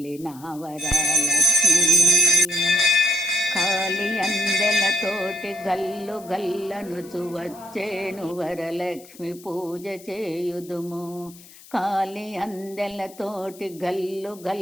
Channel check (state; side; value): noise; left; hiss, 21 dB below the sound